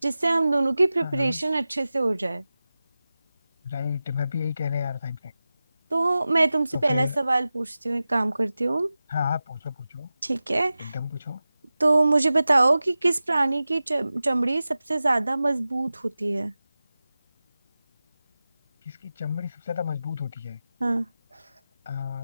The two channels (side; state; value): both; inverted; correlation -0.95